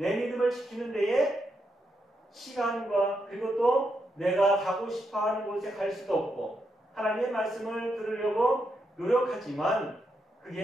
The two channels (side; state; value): both; normal; correlation 0.82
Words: 믿음을 지키는 데에 시간과 그리고 또 내가 가고 싶어하는 곳에 갈 수도 없고 하나님의 말씀을 들으려고 노력하지만